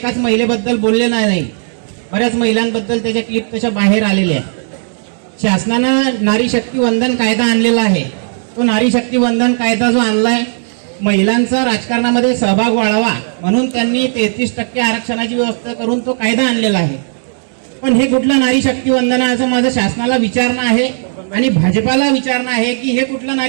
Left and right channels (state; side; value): silent; left; digital silence